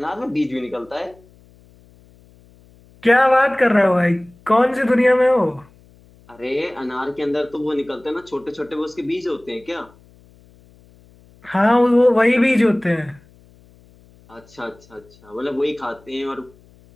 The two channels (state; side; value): noise; left; hum, 28 dB below the sound